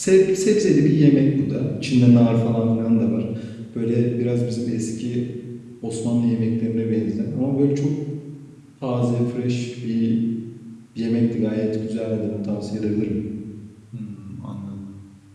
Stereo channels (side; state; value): both; identical; correlation 1.00